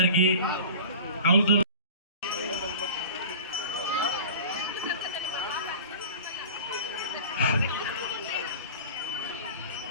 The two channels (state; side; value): inverted; both; correlation -0.37